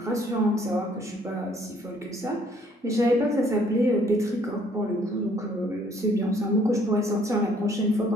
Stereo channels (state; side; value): normal; both; correlation 0.62